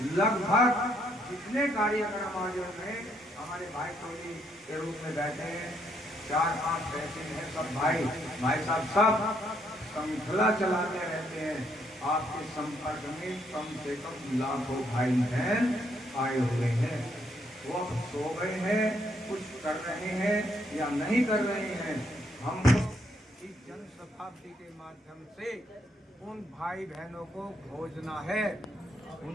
लगभग जितने कार्यक्रम आयोजन में हमारे भाई टोली के रूप में बैठे हैं, 4-5 ऐसे हैं, सब भाई साहब सब श्रृंखला चलाते रहते हैं। आपके संपर्क में कम से कम लाखों भाई बहन आए हुए हैं। वो अब सो गए हैं, कुछ कर रहे हैं या नहीं कर रहे हैं। हमको इस जन शताब्दी के माध्यम से उन भाई बहनों को खोजना है,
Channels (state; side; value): normal; both; correlation 0.72